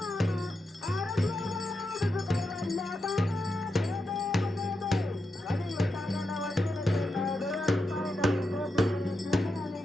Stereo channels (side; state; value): both; normal; correlation 0.87